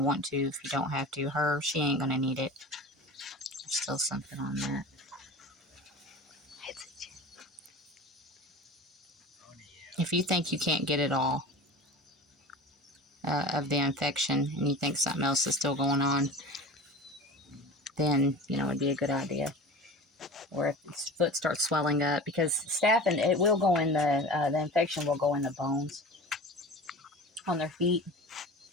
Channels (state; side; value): normal; both; correlation 0.35